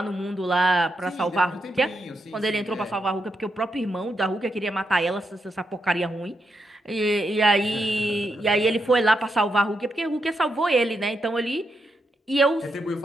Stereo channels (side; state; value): both; normal; correlation 0.83